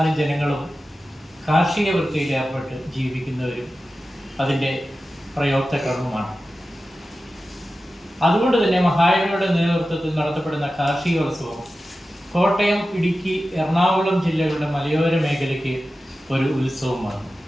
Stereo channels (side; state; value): both; normal; correlation 0.94